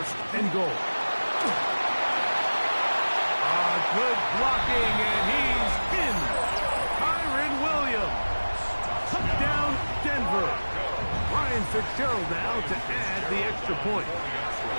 and goal. Good blocking, and he's in. Kyron Williams. Touchdown, Denver. Ryan Fitzgerald now to add the extra point.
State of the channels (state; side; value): inverted; both; correlation -1.00